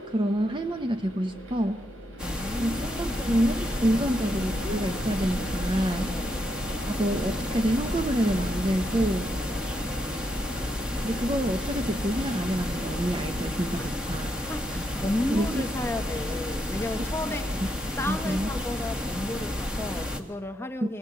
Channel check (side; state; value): both; normal; correlation 0.80